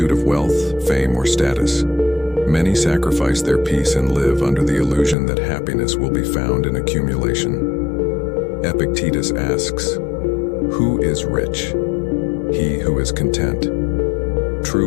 of wealth, fame, or status, many sacrifice their peace and live under the illusion that happiness will be found in accumulation. Epictetus asks, "Who is rich? He who is content."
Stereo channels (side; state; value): right; drops out; at 5.2 s